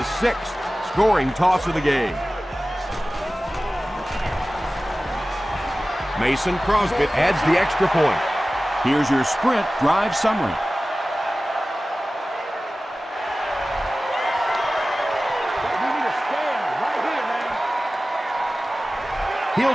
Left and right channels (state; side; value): normal; both; correlation 0.96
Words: 6th scoring toss of the game. Mason Crosby adds the extra point. Here's your sprint drive summary.